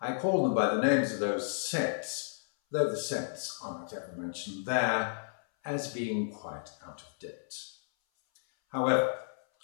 call them by the names of those sects, though the sects are not ever mentioned there, as being quite out of date. However,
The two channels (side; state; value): right; silent; 56 dB below the other